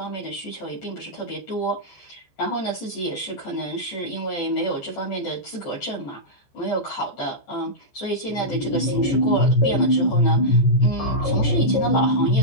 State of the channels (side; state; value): right; late; 14 ms